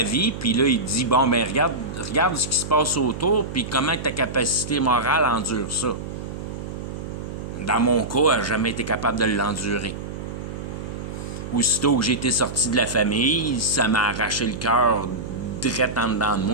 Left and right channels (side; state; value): right; noise; hum, 8 dB below the sound